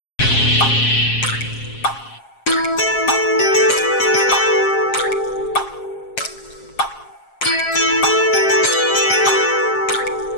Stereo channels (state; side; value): late; right; 7.5 ms